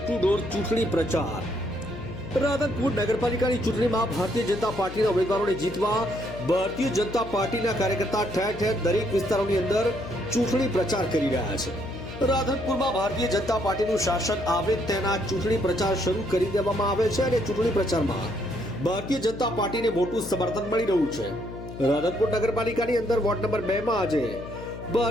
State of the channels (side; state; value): left; noise; hum, 11 dB below the sound